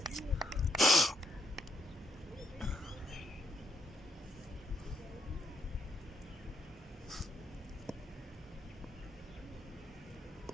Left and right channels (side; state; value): both; normal; correlation 0.74